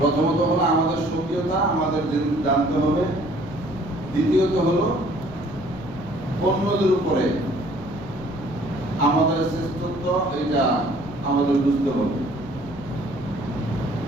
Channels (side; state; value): left; noise; rumble, 16 dB below the sound